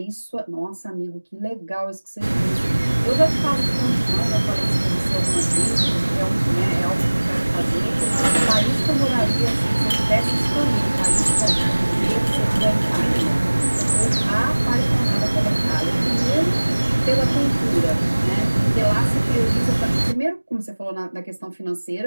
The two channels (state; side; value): inverted; both; correlation -1.00